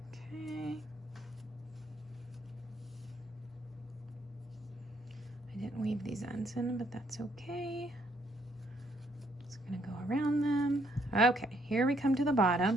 Okay. I didn't weave these ends in, but that's okay. Just gonna go around them. Okay, here we come to the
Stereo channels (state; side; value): normal; both; correlation 0.70